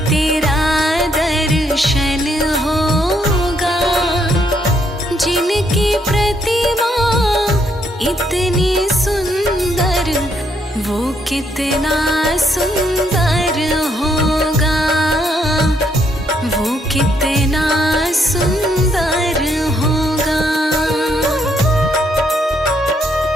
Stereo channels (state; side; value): normal; both; correlation 0.73